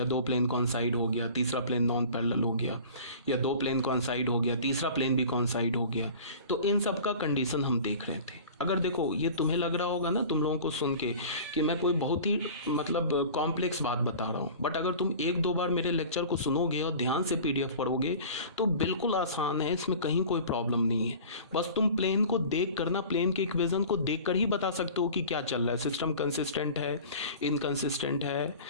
दो प्लेन कॉन्साइड हो गया, तीसरा प्लेन नॉन पैरेलल हो गया, या दो प्लेन कॉन्साइड हो गया, तीसरा प्लेन भी कॉन्साइड हो गया। तो इन सब का कंडीशन हम देख रहे थे। अगर देखो ये तुम्हें लग रहा होगा ना तुम लोगों को सुन के कि मैं कोई बहुत ही मतलब कॉम्प्लेक्स बात बता रहा हूँ, बट अगर तुम एक दो बार मेरे लेक्चर को सुनोगे और ध्यान से PDF पढ़ोगे तो बिल्कुल आसान है, इसमें कहीं कोई प्रॉब्लम नहीं है। बस तुम प्लेन को देख कर ना, प्लेन के इक्वेशन को देख कर ही बता सकते हो कि क्या चल रहा है, सिस्टम कंसिस्टेंट है, इनकंसिस्टेंट है,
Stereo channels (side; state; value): both; inverted; correlation -0.40